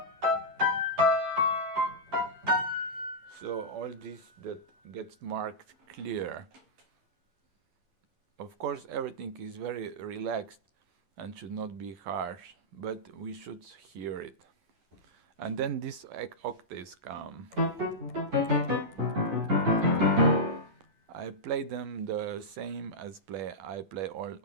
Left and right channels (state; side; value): late; left; 10 ms